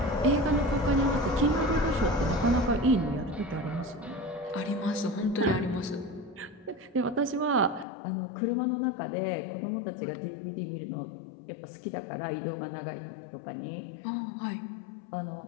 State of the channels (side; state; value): right; drops out; at 7.9 s